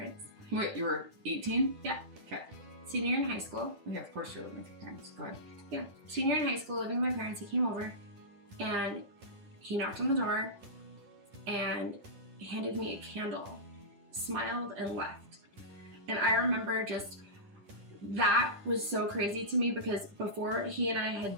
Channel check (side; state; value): left; late; 10 ms